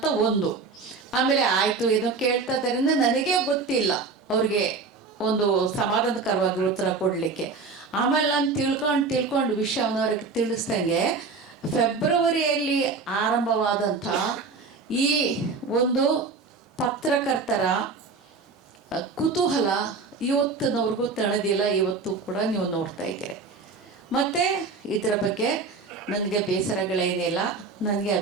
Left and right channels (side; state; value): left; quieter; 4.4 dB